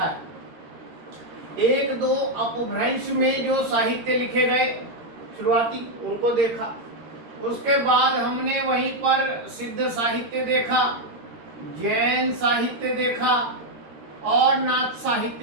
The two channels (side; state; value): left; late; 13 ms